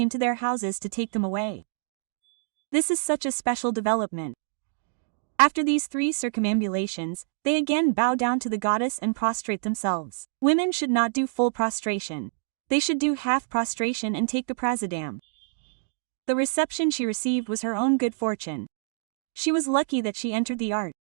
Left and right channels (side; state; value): left; silent; digital silence